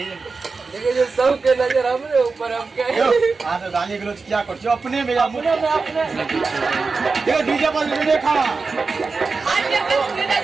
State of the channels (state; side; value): quieter; left; 4.3 dB